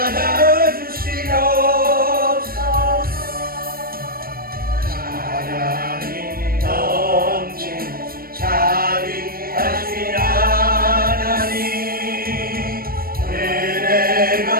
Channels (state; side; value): late; left; 0.43 ms